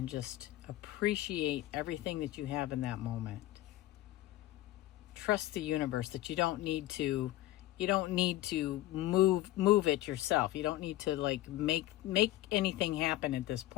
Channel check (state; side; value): quieter; right; 15.7 dB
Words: just appreciate everything that you have in that moment. Trust the universe that you don't need to move it yourself. You don't need to like make anything happen at this